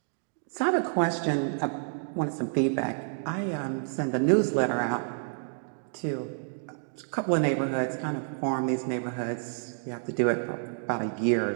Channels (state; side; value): silent; left; digital silence